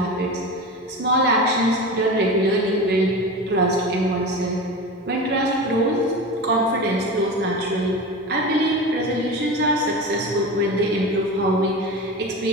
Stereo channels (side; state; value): both; normal; correlation 0.28